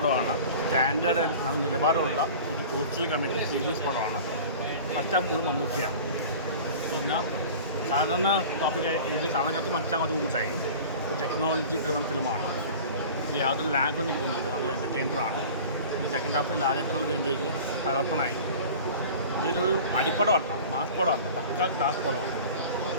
സ്റ്റാൻഡേർഡ് നിലവാരമുള്ള ഒരു സോഷ്യൽ കമ്മിറ്റി സീരീസ് പടമാണ്. മച്ചാൻ പോലും മമ്മൂട്ടിയാണ്. പിന്നെ സാധാരണ ടോപ്പിക്ക് ഇത് സാധാരണക്കാർക്ക് മനസ്സിലാകാൻ കുറച്ച് കൂട്ടായി. ഒരു ടെക്നോളജി ഡ്രിവൺ ഫിലിമാണ്. ഇനി യാതൊരു ലാഗൊന്നും എനിക്ക് തോന്നുന്നില്ല. നല്ല എൻ്റർടൈനറാണ്. ഈ സെക്കൻഡ് ഹാഫിൽ ലാലേട്ടങ്ങൾ വരുമ്പോഴേക്കും തകർപ്പണായി. ഇതൊരു അടിപ്പടമല്ല, മാസ് പടമല്ല, പക്ക ക്ലാസ് പടമാണ്.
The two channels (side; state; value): both; inverted; correlation -0.39